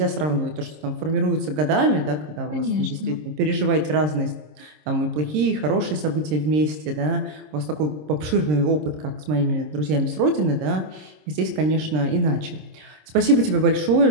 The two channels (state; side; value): late; left; 26 ms